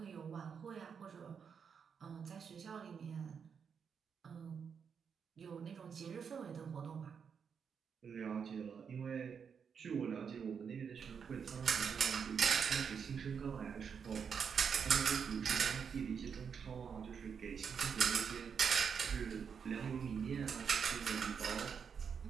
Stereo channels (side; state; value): left; quieter; 6.7 dB